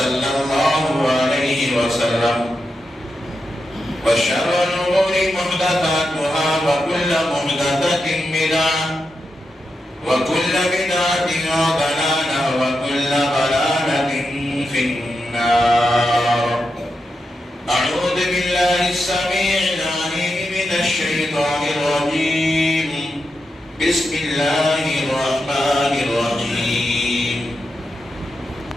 الله عليه وسلم وشر الأمور محدثاتها وكل محدثة بدعة وكل بدعة ضلالة وكل ضلالة في النار. أعوذ بالله السميع العليم من الشيطان الرجيم. بسم الله الرحمن الرحيم.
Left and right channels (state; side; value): normal; both; correlation 0.87